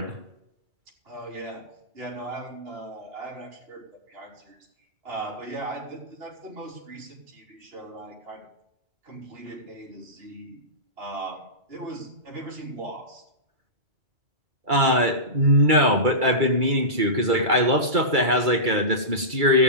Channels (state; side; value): late; left; 2.3 ms